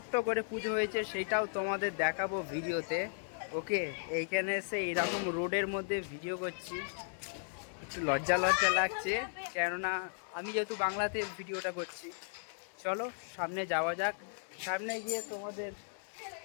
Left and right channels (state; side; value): silent; right; digital silence